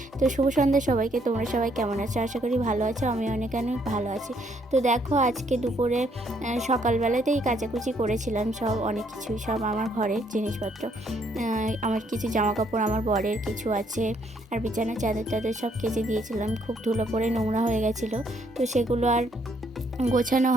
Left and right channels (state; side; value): normal; both; correlation 0.69